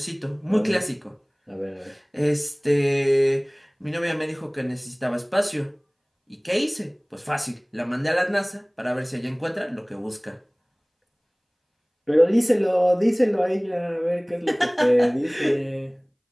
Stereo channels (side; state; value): both; identical; correlation 1.00